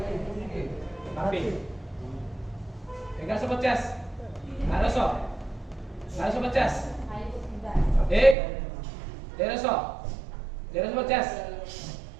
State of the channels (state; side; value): drops out; left; at 8.3 s